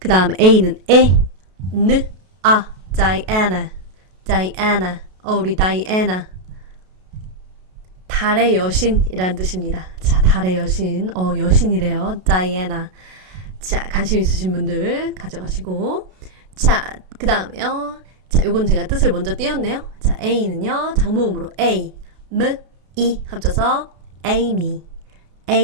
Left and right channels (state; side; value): late; left; 32 ms